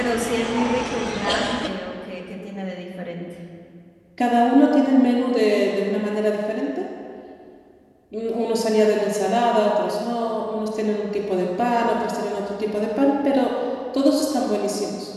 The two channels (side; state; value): both; identical; correlation 1.00